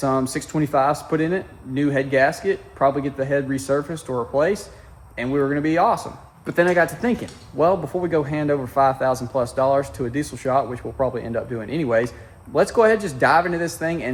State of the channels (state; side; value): identical; both; correlation 1.00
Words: 625s put in it, new head gasket, probably get the head resurfaced or replaced, and we were going to be awesome. But then I got to thinking, well, before we go hand over $5,000+ to a diesel shop, which we'll probably end up doing anyways, let's go ahead and just dive into this thing